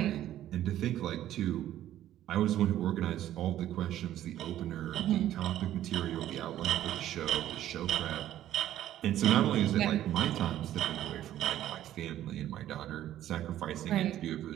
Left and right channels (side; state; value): left; quieter; 12.6 dB